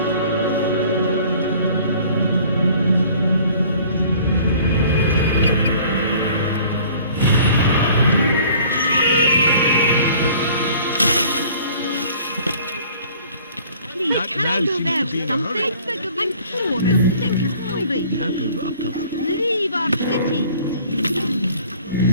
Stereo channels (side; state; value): both; inverted; correlation -0.52